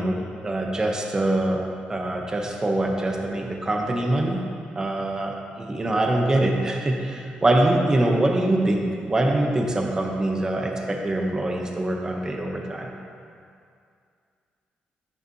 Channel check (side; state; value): both; normal; correlation 0.91